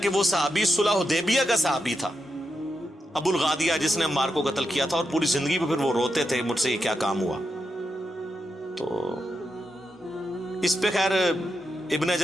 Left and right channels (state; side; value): normal; both; correlation 0.85